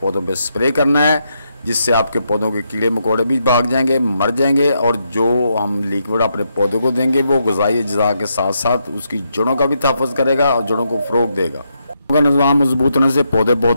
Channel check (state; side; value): inverted; both; correlation -0.80